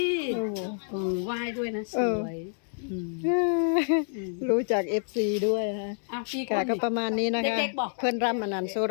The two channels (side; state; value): right; silent; digital silence